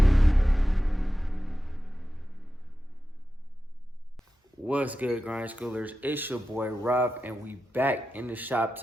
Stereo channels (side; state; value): both; normal; correlation 0.92